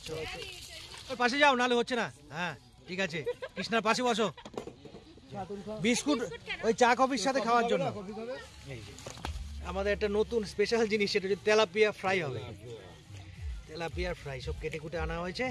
ওর পাশে যাও, নাহলে হচ্ছে না। হ্যাঁ ঠিক আছে, কৃষ্ণার পাশে বসো। বিস্কুট ওই চা কফির সাথে খাওয়ার জন্য। এই যে আমাদের একটা নতুন স্পেশাল জিনিস, সেটা হচ্ছে তেলাপিয়া ফ্রাই হবে। তেলাপিয়া ফ্রাই সব কেটে কুটে আনা হয়েছে,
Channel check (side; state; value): both; identical; correlation 1.00